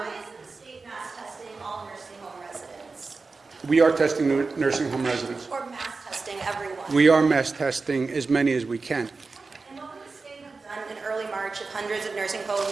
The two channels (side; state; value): left; quieter; 4.1 dB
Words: isn't the state mass testing all nursing home residents? We are testing nursing home residents. Or mass testing everyone? We are mass testing as many as we can. And what would the state have done in early March if hundreds of nursing